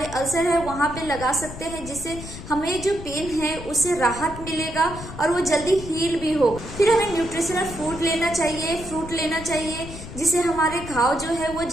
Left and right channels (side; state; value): left; noise; rumble, 12 dB below the sound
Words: अल्सर है वहां पे लगा सकते हैं, जिससे हमें जो पेन है उससे राहत मिलेगा और वो जल्दी हील भी हो। फिर हमें न्यूट्रिशनल फूड लेना चाहिए, फ्रूट लेना चाहिए, जिससे हमारे घाव जो है वो